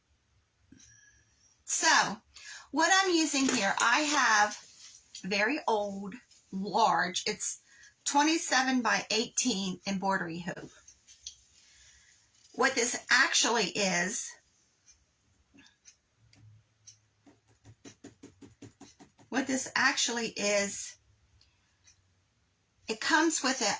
So, what I'm using here, I have very old, large, it's 27 by 18 embroidery hoop. What this actually is, it comes with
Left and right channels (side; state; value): both; identical; correlation 1.00